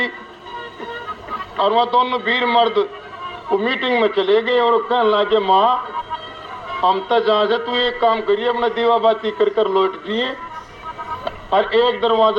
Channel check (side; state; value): both; identical; correlation 1.00